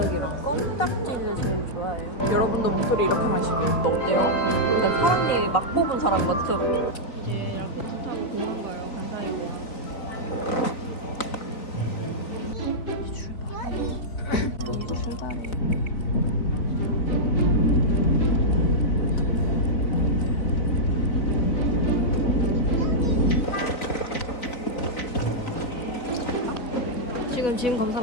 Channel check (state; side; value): late; right; 4.0 ms